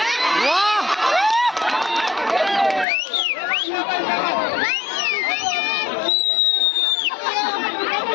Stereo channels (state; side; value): drops out; right; at 2.9 s